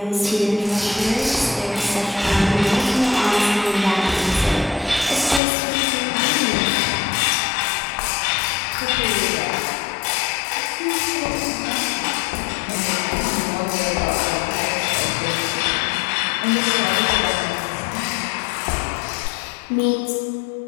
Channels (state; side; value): drops out; right; at 5.4 s